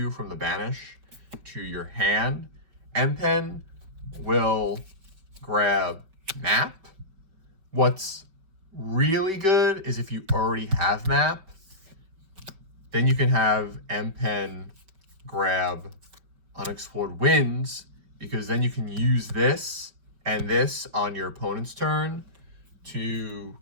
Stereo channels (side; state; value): left; late; 5.2 ms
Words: from the banish to your hand. Empen will grab Map. What's really good is if you already have Map, then you can have Empen grab Unexplored Winds, because then you can use this and this on your opponent's turn to